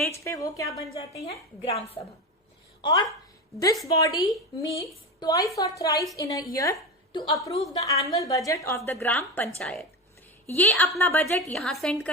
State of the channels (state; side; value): normal; both; correlation 0.21